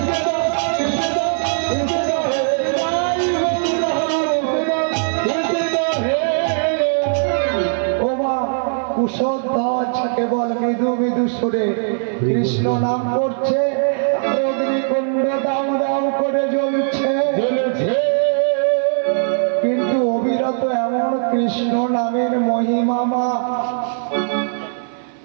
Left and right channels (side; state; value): left; silent; 56 dB below the other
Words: কুশধ্বজ কেবল মৃদু মৃদু সুরে কৃষ্ণ নাম করছে, অগ্নিকুণ্ড দাউ দাউ করে জ্বলছে। কিন্তু অবিরত এমন কৃষ্ণ নামের মহিমামা